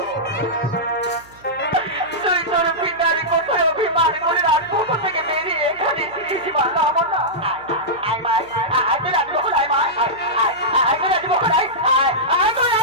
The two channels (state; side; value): noise; right; hum, 26 dB below the sound